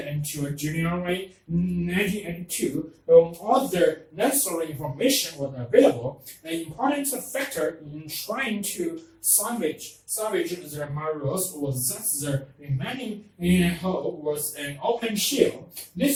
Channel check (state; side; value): identical; both; correlation 1.00